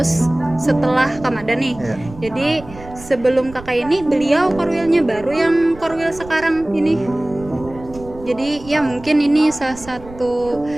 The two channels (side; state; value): right; noise; rumble, 18 dB below the sound